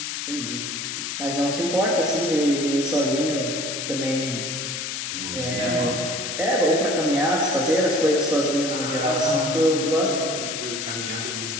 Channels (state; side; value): noise; left; hiss, 4 dB below the sound